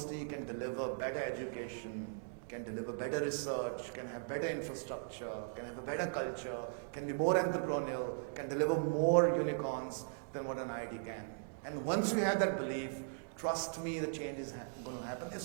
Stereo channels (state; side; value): silent; left; digital silence